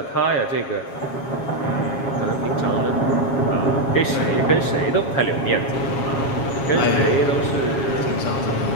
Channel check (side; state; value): right; late; 7.3 ms